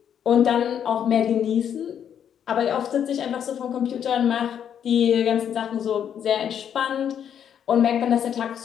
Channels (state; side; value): quieter; right; 8.8 dB